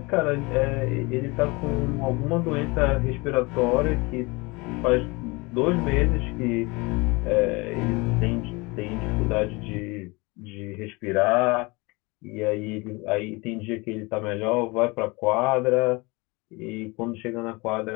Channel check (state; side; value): quieter; right; 25.6 dB